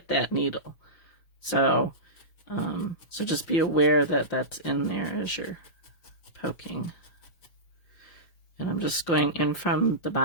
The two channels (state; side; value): late; right; 6.2 ms